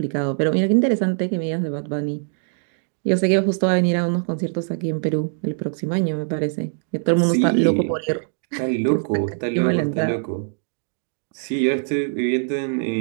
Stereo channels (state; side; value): silent; left; digital silence